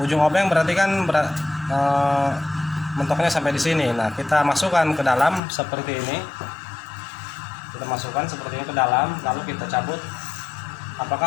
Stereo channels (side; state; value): right; drops out; at 5.4 s